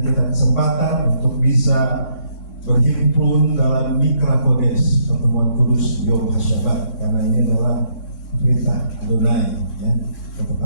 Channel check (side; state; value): right; late; 3.6 ms